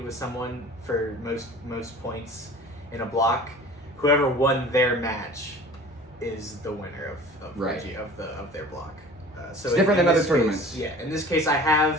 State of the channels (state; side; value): normal; both; correlation 0.43